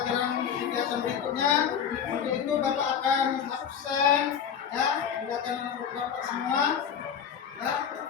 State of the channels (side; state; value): right; quieter; 7.9 dB